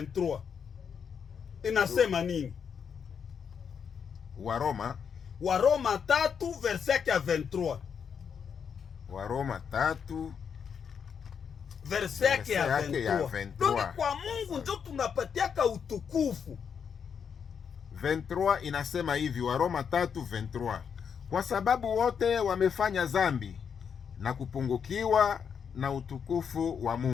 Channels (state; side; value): quieter; right; 7.0 dB